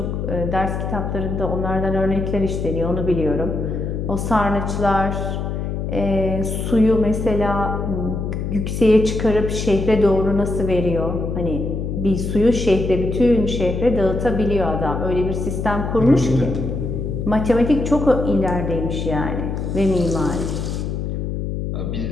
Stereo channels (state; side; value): noise; left; hum, 3 dB below the sound